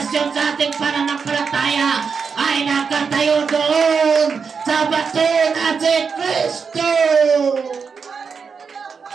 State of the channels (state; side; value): quieter; left; 5.7 dB